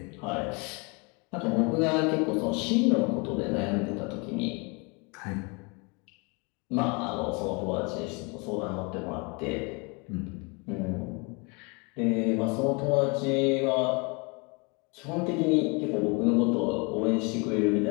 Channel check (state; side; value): quieter; right; 30.8 dB